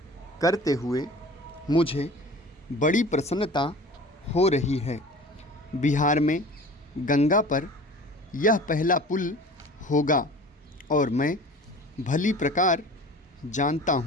करते हुए मुझे बड़ी प्रसन्नता हो रही है। बिहार में गंगा पर यह पहला पुल होगा और मैं भली प्रकार जानता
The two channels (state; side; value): normal; both; correlation 0.41